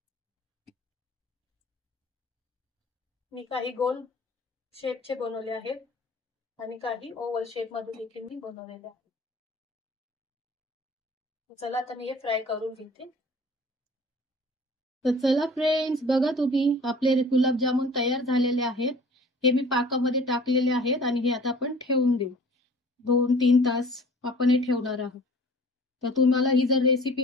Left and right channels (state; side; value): normal; both; correlation 0.47